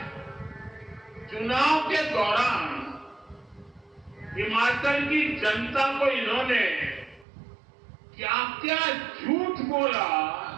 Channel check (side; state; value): left; drops out; at 7.2 s